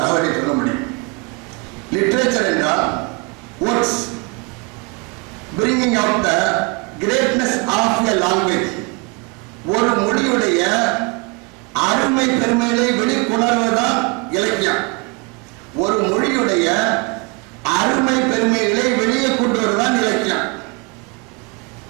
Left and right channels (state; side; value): quieter; left; 29.1 dB